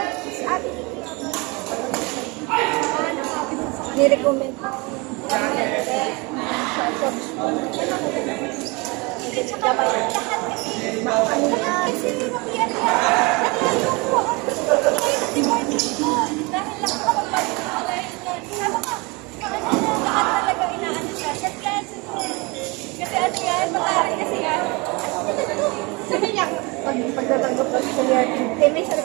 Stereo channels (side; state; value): left; quieter; 27.4 dB